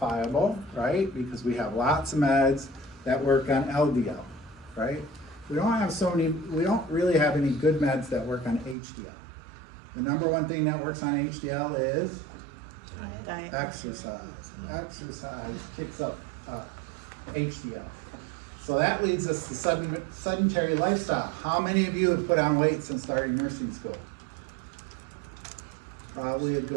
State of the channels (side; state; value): left; drops out; at 8.8 s